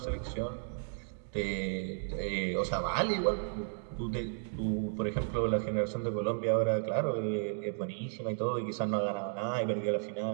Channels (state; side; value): silent; left; digital silence